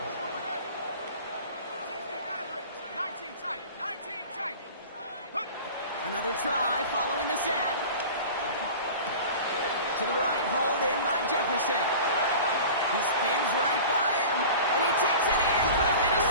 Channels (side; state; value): both; inverted; correlation -0.38